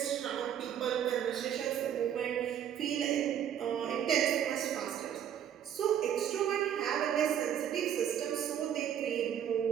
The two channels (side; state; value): left; quieter; 9.6 dB